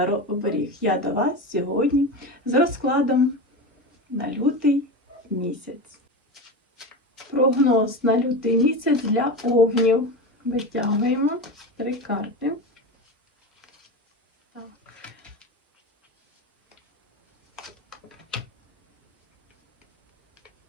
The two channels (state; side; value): normal; both; correlation 0.23